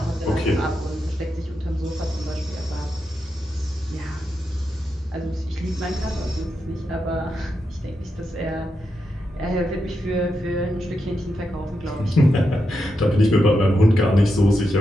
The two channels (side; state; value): both; normal; correlation 0.86